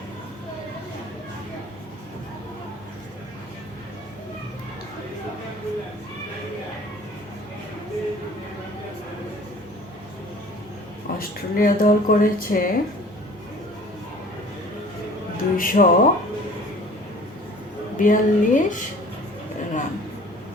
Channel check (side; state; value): both; normal; correlation 0.47